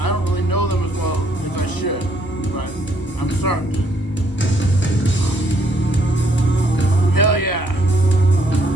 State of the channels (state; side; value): late; right; 1.1 ms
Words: don't really know them as well as I should. But I'm starting to. Hell yeah.